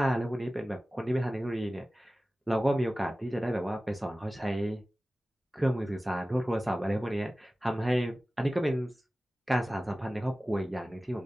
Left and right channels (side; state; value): both; normal; correlation 0.97